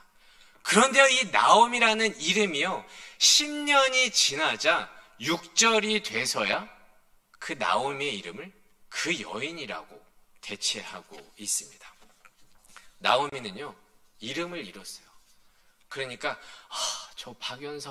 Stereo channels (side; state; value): both; identical; correlation 1.00